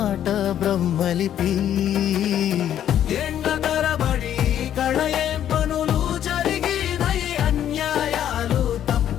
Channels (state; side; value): quieter; right; 10.5 dB